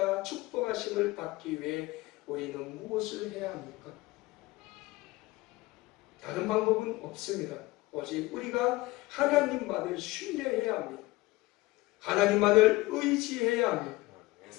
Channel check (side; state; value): right; quieter; 20.3 dB